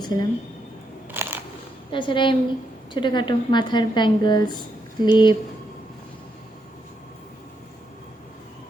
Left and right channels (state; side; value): normal; both; correlation 0.80